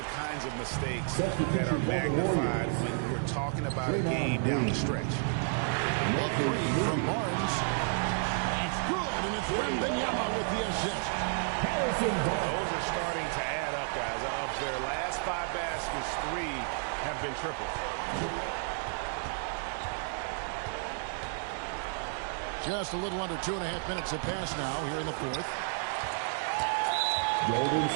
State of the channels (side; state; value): left; silent; 57 dB below the other